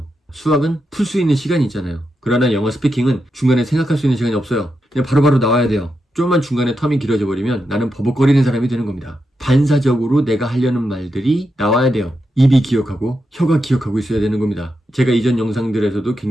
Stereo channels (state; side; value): normal; both; correlation 0.86